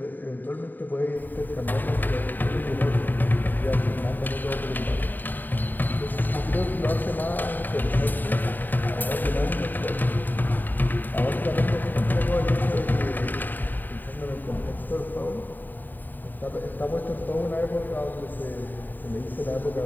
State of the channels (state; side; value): late; right; 0.089 ms